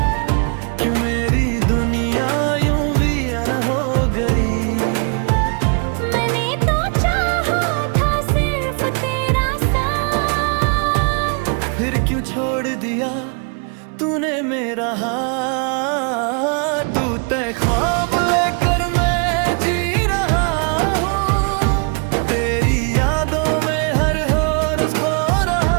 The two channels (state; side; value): quieter; left; 38.7 dB